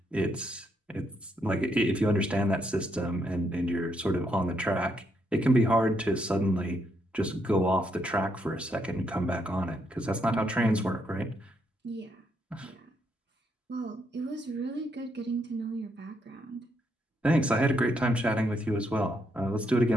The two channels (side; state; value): both; normal; correlation 0.76